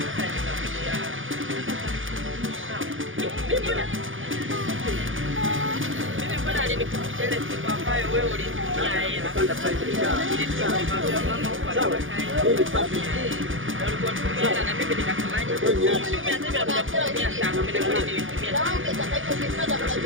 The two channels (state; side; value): late; left; 0.58 ms